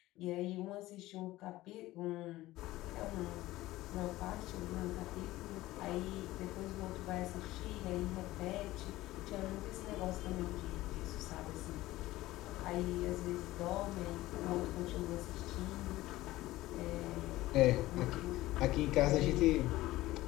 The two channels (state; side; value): quieter; right; 17.1 dB